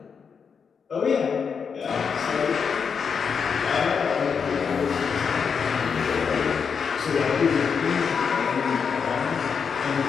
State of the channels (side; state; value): right; quieter; 6.3 dB